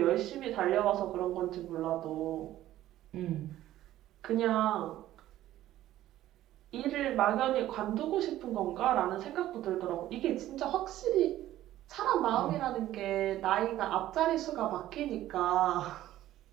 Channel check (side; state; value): left; quieter; 13.9 dB